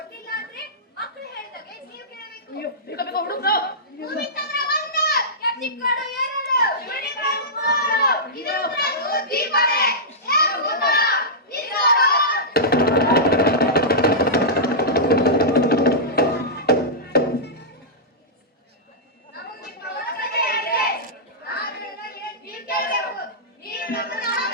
ಅಂದ್ರೆ ಮಕ್ಕಳು ಹೇಳಿದಾಗೆ ನೀವು ಕೇಳಬೇಕು. ಅಯ್ಯೋ ಬೇಗ ಬೇಗ ಹುಡುಗ್ರು. ಭೂಮಿತಂದ್ರ ಒಂದು, ಕೆತ್ತಿಕ್ಕೋಡು ಎರಡು, ಯುನಿಕಾರ್ನ್ ಮೂರು. ಇದು ಉತ್ತರದ್ದು ದೀಪವೇ. ಏ ಭೂತ, ನಿಲ್ಲೋಡು. ನಮಗೆ ಪ್ರವಾಸಕ್ಕೆ ಹೇಳಿದೆ. ನಾನು ನಿಮಗೆ ನೀರು ಕೇಳಬೇಕು. ನೀರು ನಮ್ಮನ್ನ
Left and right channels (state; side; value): normal; both; correlation -0.13